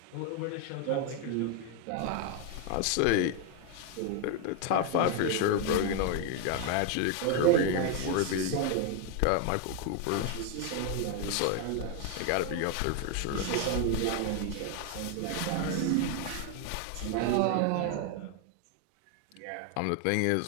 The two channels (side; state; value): both; different; correlation 0.01